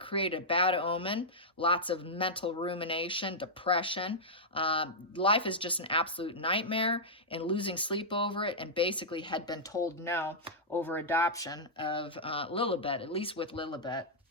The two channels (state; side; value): normal; both; correlation -0.09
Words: a bad omen, lots of mental rumination, depression. Life is just an absolute nightmare, and losing sleep over it, and basically had been told no over adoption of Lilibet, at least with Lilibet.